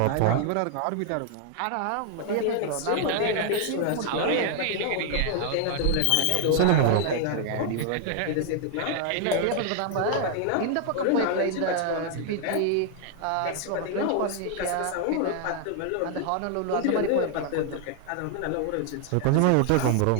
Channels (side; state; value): both; different; correlation 0.00